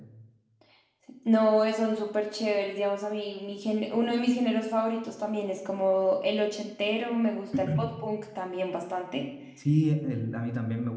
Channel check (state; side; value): identical; both; correlation 1.00